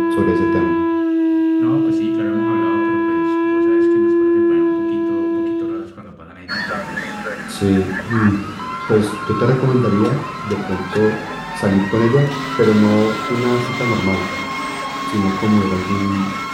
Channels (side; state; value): both; identical; correlation 1.00